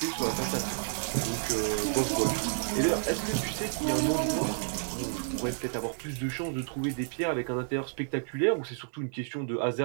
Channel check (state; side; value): silent; left; 57 dB below the other